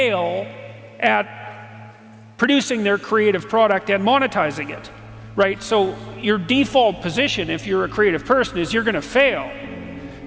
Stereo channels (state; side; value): identical; both; correlation 1.00